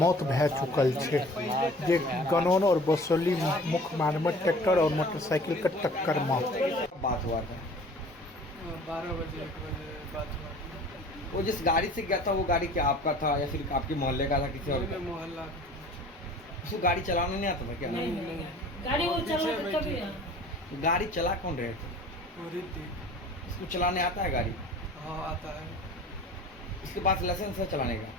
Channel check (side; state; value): both; normal; correlation 0.46